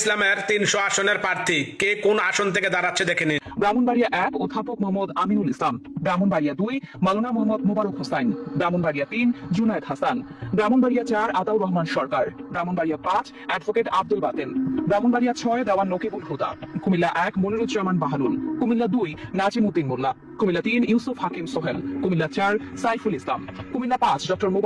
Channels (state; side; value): identical; both; correlation 1.00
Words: ৩০০ আসনের প্রার্থী কে কোন আসন থেকে দাঁড়াচ্ছে দেখে নিন। ব্রাহ্মণবাড়িয়া ১ অধ্যাপক মোহাম্মদ আমিনুল ইসলাম, ব্রাহ্মণবাড়িয়া ২ মাওলানা মোহাম্মদ মোবারক হোসাইন, ব্রাহ্মণবাড়িয়া ৩ জুনায়েদ হাসান, ব্রাহ্মণবাড়িয়া ৪ আতাউর রহমান সরকার, ব্রাহ্মণবাড়িয়া ৫ অ্যাডভোকেট আব্দুল বাতেন, ব্রাহ্মণবাড়িয়া ৬ দেওয়ান নকিবুল হুদা, কুমিল্লা ১ মনিরুজ্জামান বাহালুল, কুমিল্লা ২ নাজিম উদ্দিন মোল্লা, কুমিল্লা ৩ ইউসুফ হাকিম সোহেল, কুমিল্লা ৪ সাইফুল ইসলাম, কুমিল্লা ৫ ডক্টর